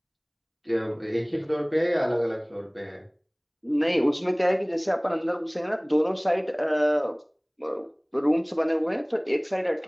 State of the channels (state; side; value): identical; both; correlation 1.00